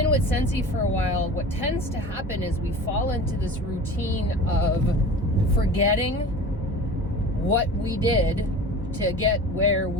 with Scentsy for a while, what tends to happen is we fall into this routine of forgetting what we did to get where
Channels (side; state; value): both; normal; correlation 0.37